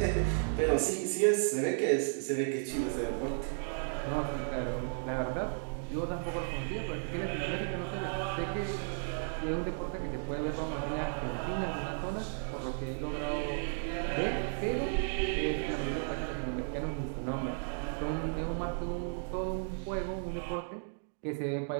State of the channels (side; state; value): left; silent; digital silence